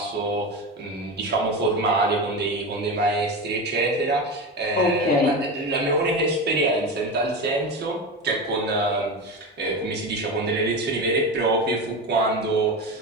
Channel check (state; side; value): normal; both; correlation 0.22